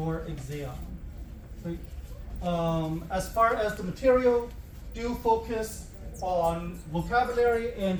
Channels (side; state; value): both; identical; correlation 1.00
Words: exam. Okay. As far as the material, do focus on vocabulary and